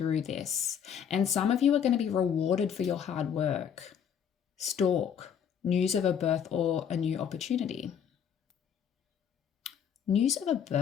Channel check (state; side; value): quieter; right; 8.1 dB